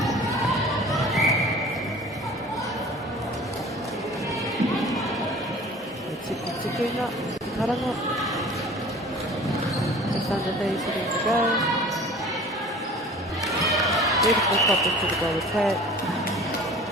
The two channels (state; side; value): normal; both; correlation 0.44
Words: Tiki ngā, karanga. Just under 30 seconds to go. Beautiful pop into the goal attack.